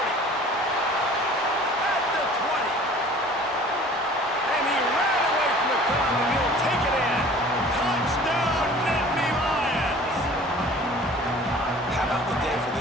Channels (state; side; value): normal; both; correlation 0.47